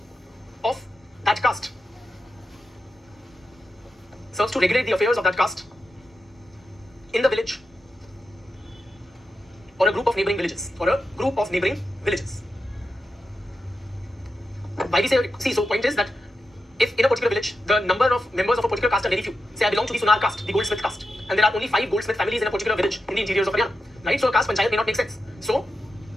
of that caste. Serves to regulate the affairs of that caste in the village or a group of neighboring villages Why we say, see, so point is that if in a particular village, the number of members of a particular caste are very few, say I belong to the Sunar caste, the goldsmith caste, and there are only 5 goldsmith families in a particular village in the interiors of Haryana, right? So a caste panchayat may not make sense. So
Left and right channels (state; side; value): normal; both; correlation 0.89